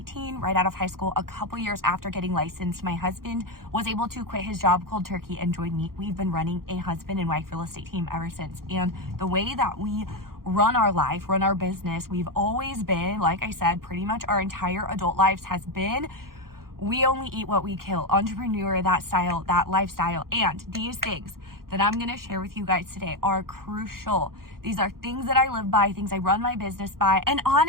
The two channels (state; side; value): late; left; 0.92 ms